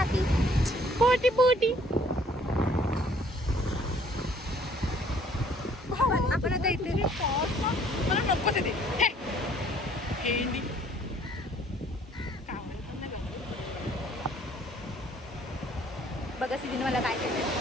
पोटी काहीतरी मला नको ते हेंडी बघा सिद्धीने मला काय केलं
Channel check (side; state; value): both; normal; correlation 0.60